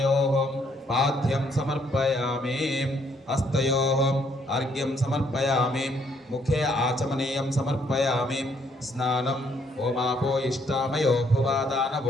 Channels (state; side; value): normal; both; correlation 0.69